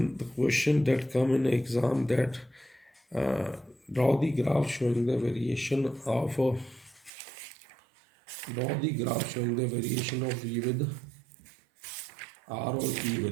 the question that come in exam that draw the graph showing the variation of V with R or E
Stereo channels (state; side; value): drops out; left; at 7.1 s